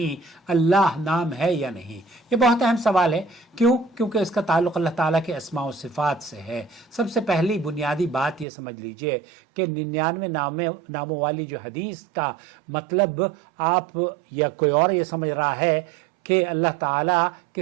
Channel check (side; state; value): left; drops out; at 8.5 s